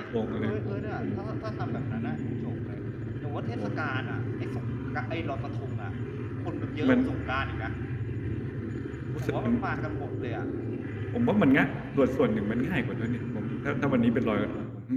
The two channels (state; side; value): identical; both; correlation 1.00